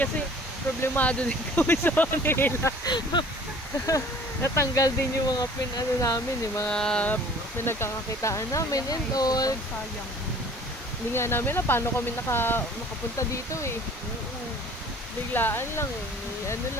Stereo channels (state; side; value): normal; both; correlation 0.50